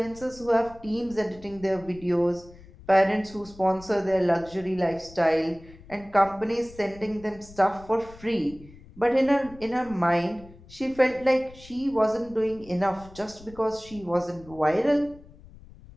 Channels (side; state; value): left; noise; rumble, 21 dB below the sound